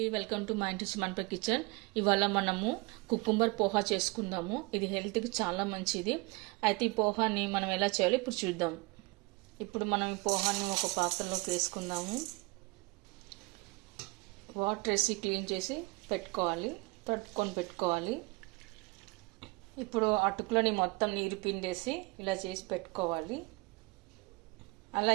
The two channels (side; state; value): left; quieter; 25.5 dB